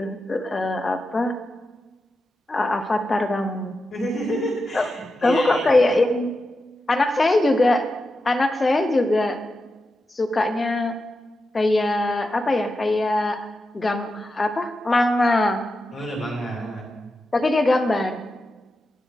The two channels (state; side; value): normal; both; correlation 0.89